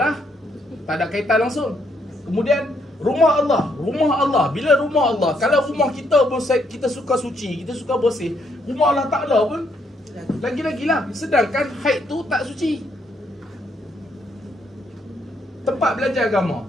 tak ada kaitan langsung. Kemudian rumah Allah. Bila rumah Allah, kalau rumah kita pun kita suka suci, kita suka bersih, rumah Allah Ta'ala pun lagi-lagi lah. Sedangkan haid tu tak suci. Tempat belajar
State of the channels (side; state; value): both; normal; correlation 0.73